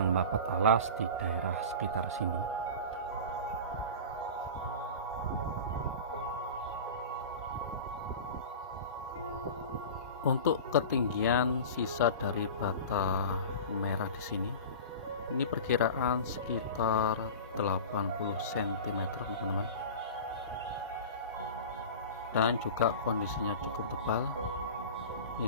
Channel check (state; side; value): inverted; both; correlation -0.34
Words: dapat alas di daerah sekitar sini. Untuk ketinggian sisa dari bata merah di sini, ini perkiraan sekitar 80 cm, teman-teman. Dan juga kondisinya cukup tebal.